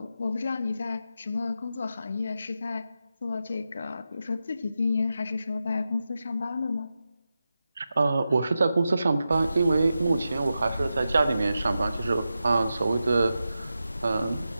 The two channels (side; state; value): both; inverted; correlation -0.90